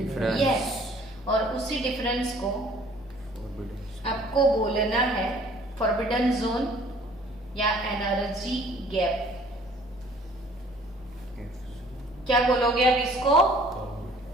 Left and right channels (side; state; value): both; normal; correlation 0.55